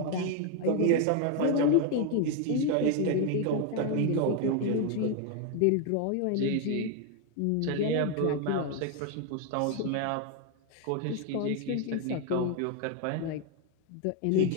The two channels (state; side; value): different; both; correlation 0.01